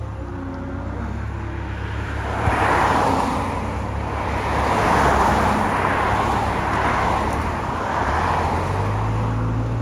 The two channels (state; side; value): identical; both; correlation 1.00